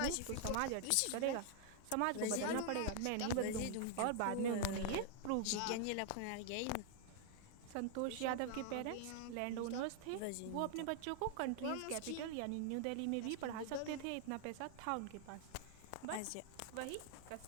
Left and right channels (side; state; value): both; different; correlation 0.00